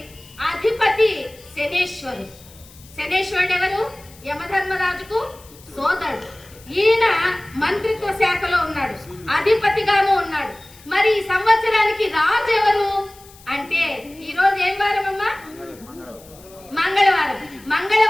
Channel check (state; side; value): noise; left; hiss, 23 dB below the sound